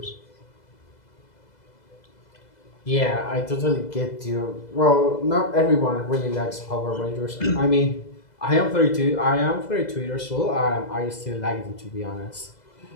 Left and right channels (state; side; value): late; right; 2.0 ms